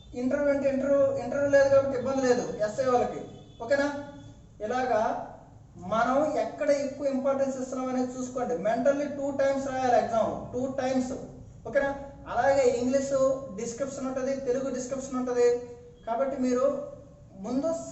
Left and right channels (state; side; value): identical; both; correlation 1.00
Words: ఇంటర్వ్యూ లేదు కాబట్టి ఇబ్బంది లేదు ఎస్ఐ వాళ్ళకి. ఓకేనా? ఇలాగా మనం ఎక్కడ ఎక్కువ ఇంపార్టెన్స్ ఇస్తున్నాం అనేది చూసుకోండి. మెంటల్లీ 2 టైమ్స్ రాయాలి ఎగ్జామ్, 2 టైమ్స్. ఓకేనా? అలాగే ఇంగ్లీషు డిస్క్రిప్షన్ ఉంటుంది, తెలుగు డిస్క్రిప్షన్ ఉంటుంది. కాబట్టి మీరు ముందు